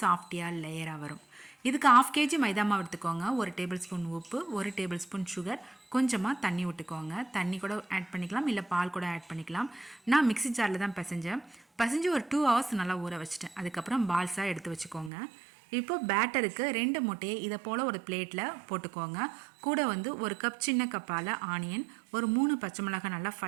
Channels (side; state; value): left; drops out; at 15.1 s